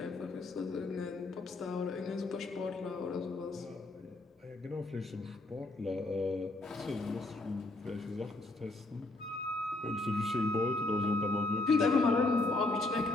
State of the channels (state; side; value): quieter; right; 3.0 dB